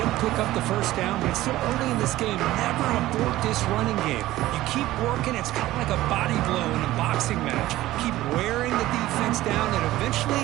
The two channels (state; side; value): quieter; left; 16.0 dB